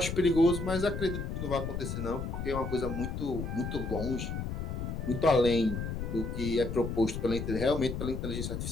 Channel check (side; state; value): left; noise; rumble, 4 dB below the sound